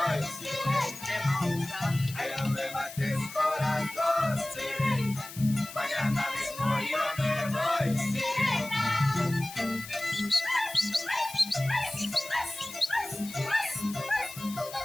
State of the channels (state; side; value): noise; left; hiss, 13 dB below the sound